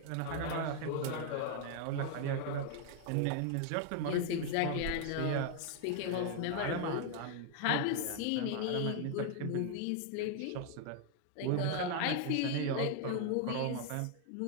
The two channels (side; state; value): both; different; correlation 0.00